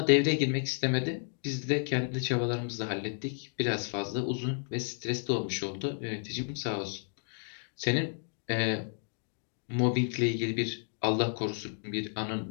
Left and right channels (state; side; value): silent; right; 56 dB below the other